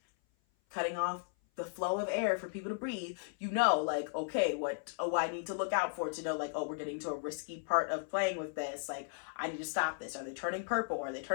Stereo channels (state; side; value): silent; right; 54 dB below the other